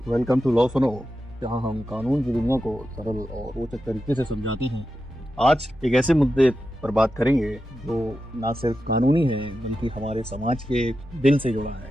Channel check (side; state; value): both; normal; correlation 0.90